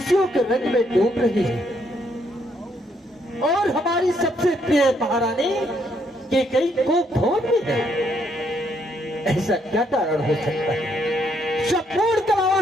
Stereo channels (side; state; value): both; normal; correlation 0.72